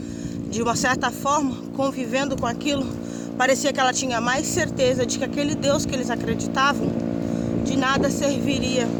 De uma certa forma, convivendo com aquilo, parecia que ela tinha mais certeza de que aquele Deus que eles acreditavam de nada serviria,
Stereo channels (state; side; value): identical; both; correlation 1.00